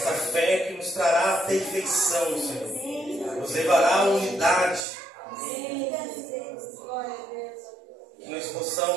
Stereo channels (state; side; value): drops out; left; at 4.9 s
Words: fé que nos trará a perfeição, Senhor. Nos levará à unidade. Que nós